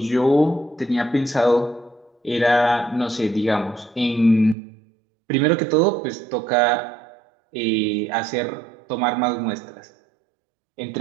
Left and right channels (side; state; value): left; drops out; at 4.5 s